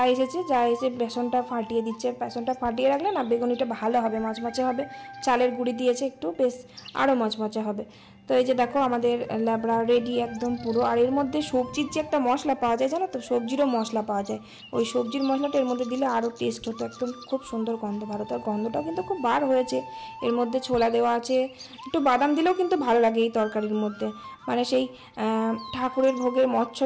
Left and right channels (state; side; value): identical; both; correlation 1.00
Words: এসে বেসনটা ফাটিয়ে দিচ্ছে, বেসনটা ফাটিয়ে রাখলে না বেগুনিটা ভালো হবে, মচমচে হবে, চালের গুঁড়ি দিয়েছে একটু, বেশ আরও মচমচে হবে। তো এই যে দেখো আমাদের ল্যাবড়া রেডি একদম পুরো। আর এর মধ্যে সবজির যে একটা মশলা পাওয়া যায় জানো তো, সবজিরও মশলা পাওয়া যায়, ওই সবজির মশলাটা এর মধ্যে দিলে আরও টেস্ট হতো, একদম খুব সুন্দর গন্ধ ভালো। তার গন্ধটাও কিন্তু খুব বার হয়েছে। এর মধ্যে ছোলা দেওয়া আছে, একটু বাদাম দিলেও কিন্তু ভালো লাগে এই তরকারির মধ্যে, মানে সেই ঠাকুরের ভোগের